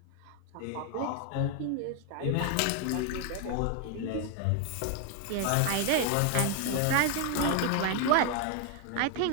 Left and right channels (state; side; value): different; both; correlation 0.00